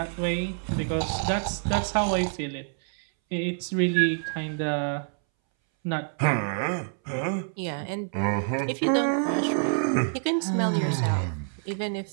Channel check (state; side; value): silent; left; 60 dB below the other